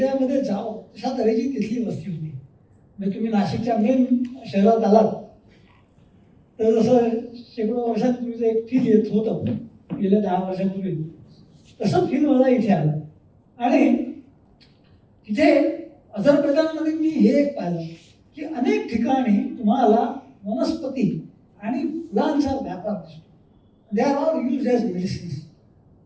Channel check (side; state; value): both; identical; correlation 1.00